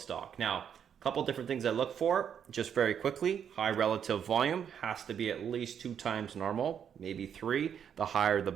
Now, a couple different things I look for, just very quickly. High relative volume has to be at least 2 times normal, maybe 3. The higher, the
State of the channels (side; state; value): left; quieter; 8.3 dB